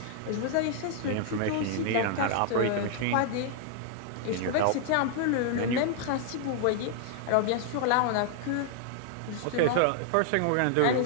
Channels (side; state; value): both; different; correlation -0.01